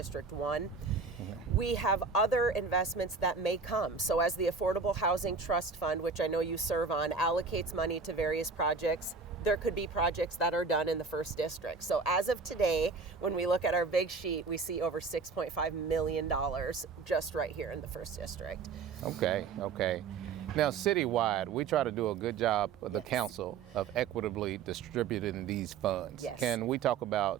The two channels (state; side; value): quieter; left; 4.9 dB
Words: 1. We have other investments that may come. So as the Affordable Housing Trust Fund, which I know you serve on, allocates money to various projects, there could be projects that are done in the first district. So as of today, when we look at our big sheet, we see over $6.5 million just right here in the first district. Okay. Now, citywide, we try to do a good job, the council, of equitably distributing these funds. Yes. Can we talk